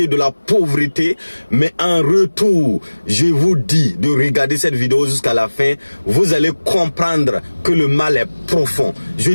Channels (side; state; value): both; inverted; correlation -1.00